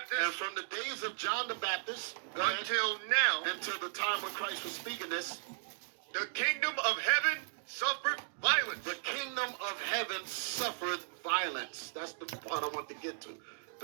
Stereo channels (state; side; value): silent; left; digital silence